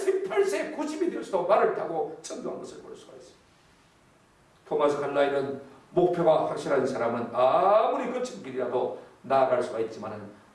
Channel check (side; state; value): both; identical; correlation 1.00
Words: 90이 되어서도 말을 타고 전도한 것을 볼 수가 있습니다. 토마스 칼라일은 목표가 확실한 사람은 아무리 거친 길이라도 나아갈 수가 있지만,